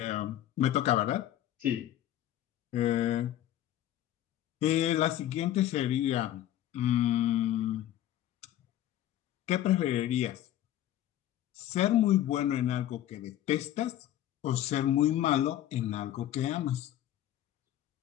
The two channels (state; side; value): quieter; right; 12.6 dB